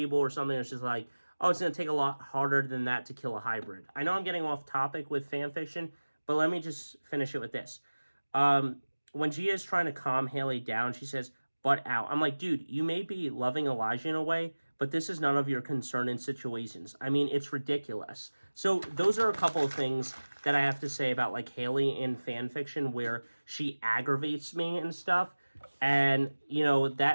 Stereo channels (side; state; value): both; inverted; correlation -1.00